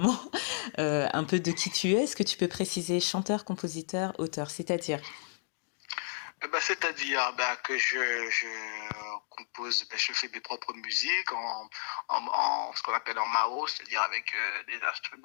un peu de qui tu es, est-ce que tu peux préciser chanteur, compositeur, auteur, c'est-à-dire? C'est-à-dire que je compose, je fais mes propres musiques en ce qu'on appelle en MAO, c'est-à-dire avec des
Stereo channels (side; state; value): right; silent; digital silence